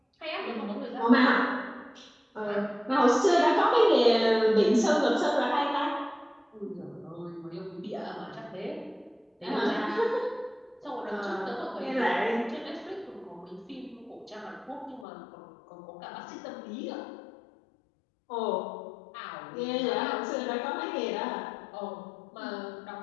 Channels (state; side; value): drops out; right; at 15.1 s